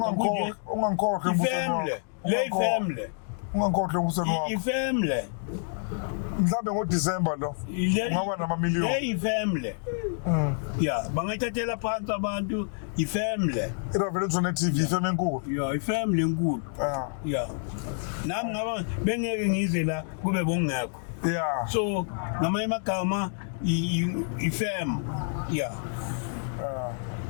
kunje. Ungangikhohlwa Ifamily. Le family. Ungangikhohlwa umbusweni wakho. Ifamily. Mhlambe ngoDecember lo. Ungaba namamiliyoni. Hey ifamily. Yeah, bangayithathela phansi abantu ifamily. Iravelezwe ne TV ifamily enkulu. Yeah, ifamily enkulu. Yeah. Nami ngaba bengeke ngize la kube bongekho. Yeah. So ngamanye amagama ifam. Yeah.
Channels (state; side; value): silent; right; digital silence